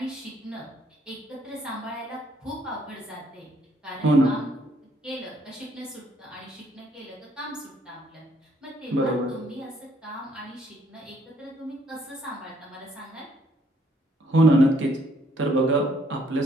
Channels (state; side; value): normal; both; correlation 0.67